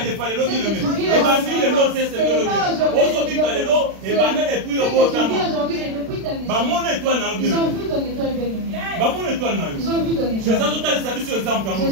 de fa le lo dire mais. E bandi le lo c'est le lo. Ozobika le lo e banda depuis yo ko tama. Ba mon étoile na yo. Ils ont vu ton étoile bien-aimée. Ba mon étoile na yo. Ils ont vu ton étoile. Je ça total service exemple en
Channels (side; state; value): left; late; 36 ms